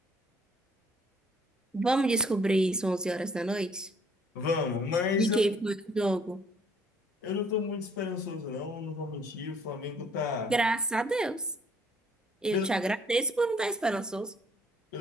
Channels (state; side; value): normal; both; correlation 0.60